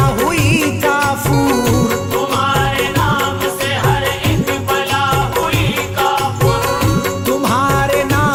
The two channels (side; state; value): both; identical; correlation 1.00